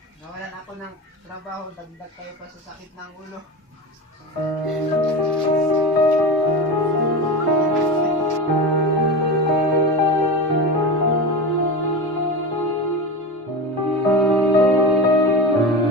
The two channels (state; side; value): normal; both; correlation 0.24